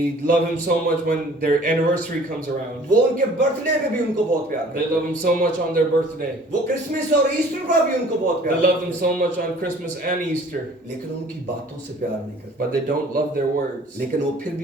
love him so much when their anniversary comes हैं, around. वो उनके बर्थडे पे भी उनको बहुत प्यार They करते love him so much on their birthday. हैं, वो क्रिसमस और ईस्टर पर भी उनको बहुत They प्यार love करते him हैं, so much on Christmas and Easter. लेकिन उनकी बातों से प्यार नहीं करते, But they don't love their words. लेकिन वो फिर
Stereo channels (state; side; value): normal; both; correlation 0.51